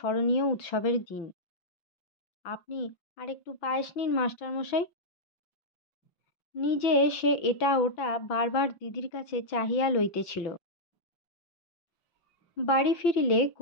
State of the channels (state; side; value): late; right; 6.0 ms